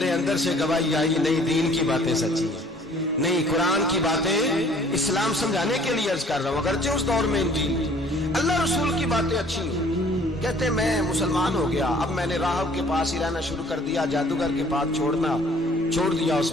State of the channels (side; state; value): both; normal; correlation 0.55